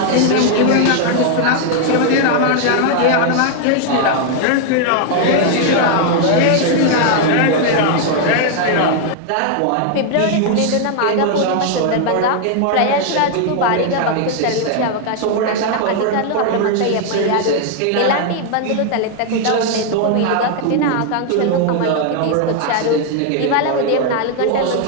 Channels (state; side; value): different; both; correlation 0.00